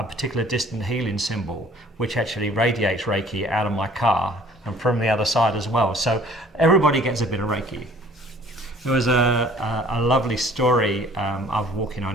particular distant healing symbol, which actually radiates Reiki out of my car and from the other side as well. So everybody gets a bit of Reiki. There was a lovely story. I was walking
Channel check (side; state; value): both; normal; correlation 0.53